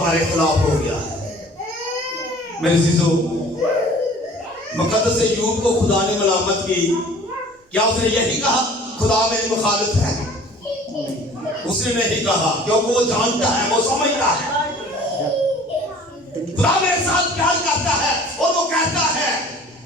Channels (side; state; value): both; normal; correlation 0.49